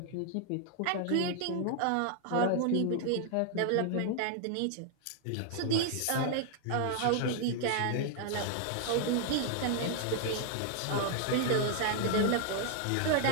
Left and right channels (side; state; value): both; different; correlation 0.00